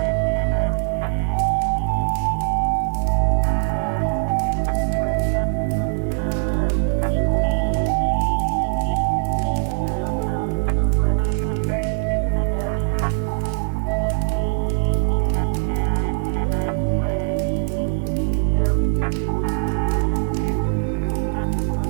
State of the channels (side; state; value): left; silent; digital silence